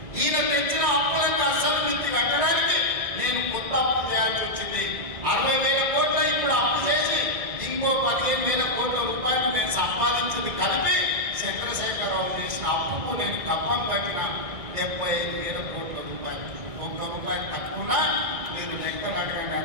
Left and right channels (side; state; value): left; late; 2.3 ms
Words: ఈయన తెచ్చిన అప్పులకు అసలు మిత్తి కట్టడానికి నేను కొత్త అప్పు చేయాల్సి వచ్చింది. 60,000 కోట్ల ఇప్పుడు అప్పు చేసి ఇంకో 15,000 కోట్ల రూపాయలు నేను సంపాదించింది కలిపి చంద్రశేఖరరావు చేసిన అప్పుకు నేను కప్పం కట్టిన 75,000 కోట్ల రూపాయలు. ఒక్క రూపాయలు తక్కువ మీరు లెక్కలు అడగండి,